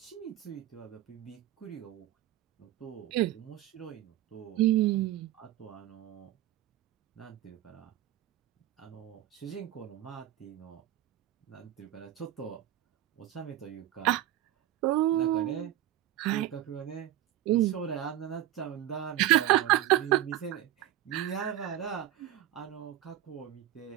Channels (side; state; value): left; quieter; 13.5 dB